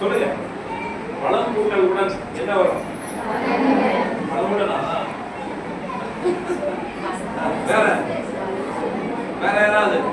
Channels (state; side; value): identical; both; correlation 1.00